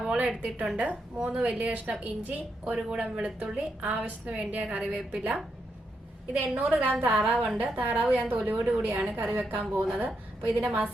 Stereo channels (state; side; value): normal; both; correlation 0.82